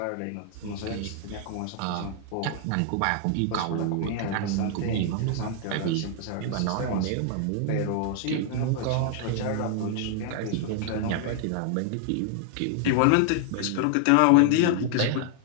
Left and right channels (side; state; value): both; different; correlation 0.00